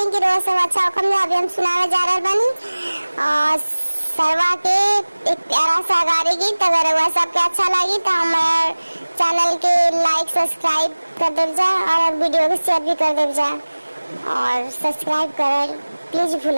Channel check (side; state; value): both; inverted; correlation -1.00